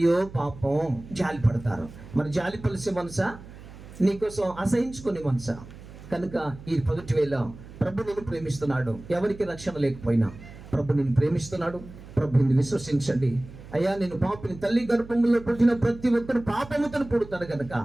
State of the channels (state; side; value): noise; right; hum, 17 dB below the sound